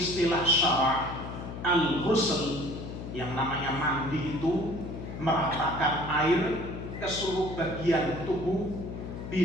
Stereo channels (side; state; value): left; noise; hum, 8 dB below the sound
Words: syara' al-ghusl, yang namanya mandi itu meratakan air ke seluruh bagian tubuh